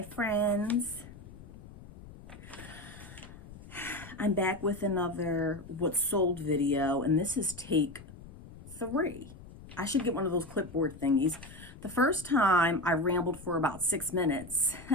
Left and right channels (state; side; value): noise; left; rumble, 17 dB below the sound